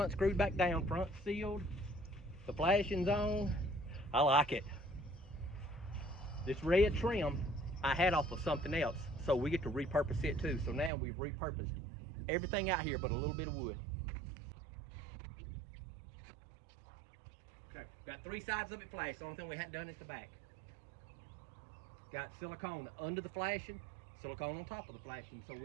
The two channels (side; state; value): left; drops out; at 10.9 s